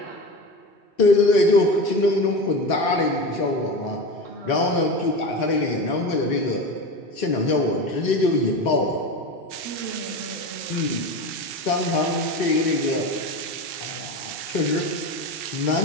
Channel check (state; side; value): late; right; 2.6 ms